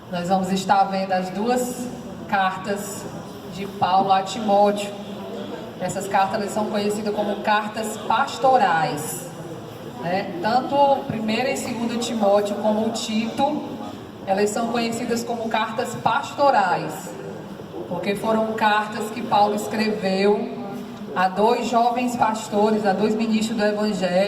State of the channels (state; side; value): identical; both; correlation 1.00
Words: nós vamos estar vendo as 2 cartas de Paulo a Timóteo. Essas cartas elas são conhecidas como cartas pastorais, né? Tanto 1ª e 2ª Timóteo como o Tito, elas são conhecidas como cartas pastorais, porque foram cartas que Paulo escreveu a 2 jovens pastores, a 2 ministros do